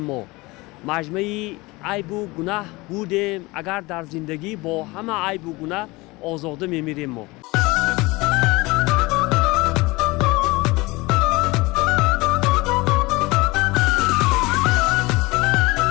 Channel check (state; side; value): quieter; right; 22.7 dB